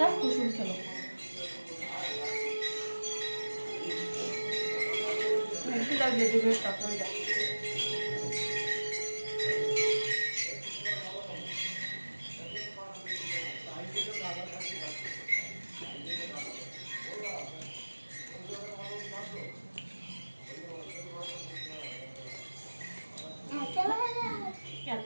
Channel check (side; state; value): both; inverted; correlation -1.00